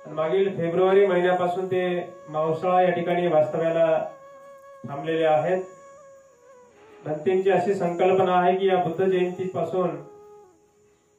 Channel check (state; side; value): identical; both; correlation 1.00